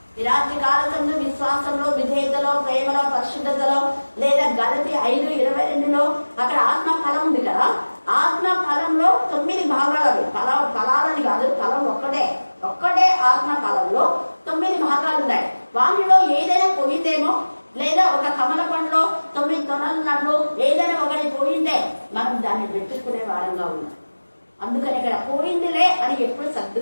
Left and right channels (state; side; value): inverted; both; correlation -1.00